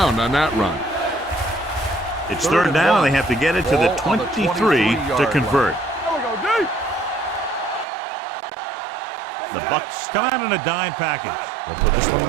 on that run. It's third down, and they have to get it to the 23 to convert. The Bucs come out in a dime package. They'll put this one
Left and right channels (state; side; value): drops out; left; at 7.9 s